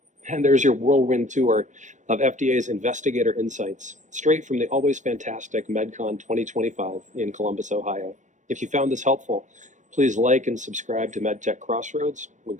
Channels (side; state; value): left; late; 0.35 ms